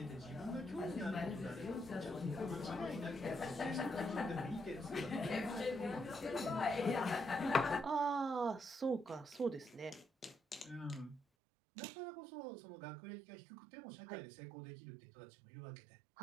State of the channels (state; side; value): drops out; left; at 11.2 s